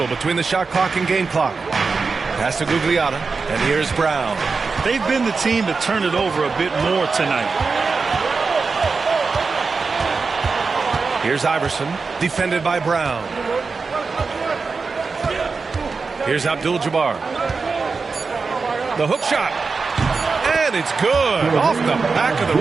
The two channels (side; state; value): left; quieter; 4.6 dB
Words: between the shot clock and game clock. Pass to Gugliotta, and here's Brown. They've been the team to turn it over a bit more tonight. Here's Iverson, defended by Brown. Here's Abdul-Jabbar. The hook shot. And it's good. Off the back of